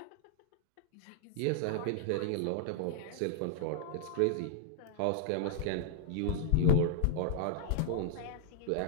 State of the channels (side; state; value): both; different; correlation -0.01